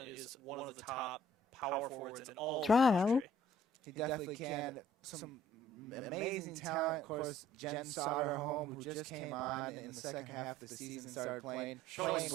is one of the top power forwards in all of the Trial. country. He definitely can. Some amazing talent. Of course, Jen Soderholm, who just came on in the second half of the season, started playing well.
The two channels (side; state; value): both; normal; correlation 0.57